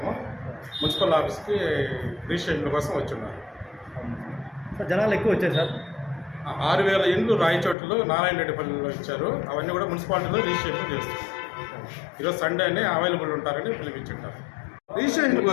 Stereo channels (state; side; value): drops out; right; at 7.8 s